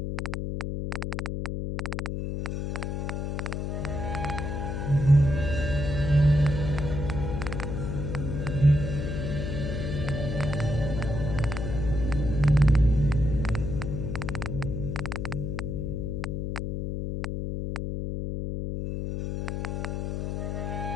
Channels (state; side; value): noise; left; hum, 2 dB below the sound